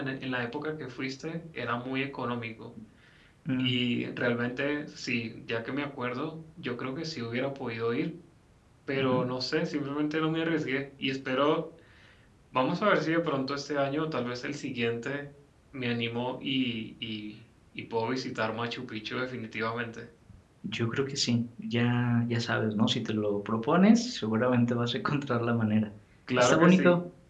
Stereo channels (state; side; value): identical; both; correlation 1.00